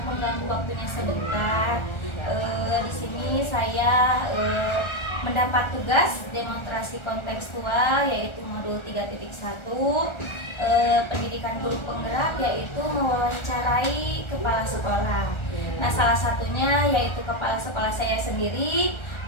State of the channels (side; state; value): right; late; 1.3 ms